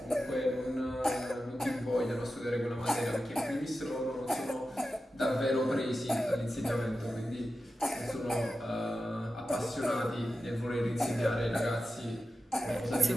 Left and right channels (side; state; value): both; normal; correlation 0.92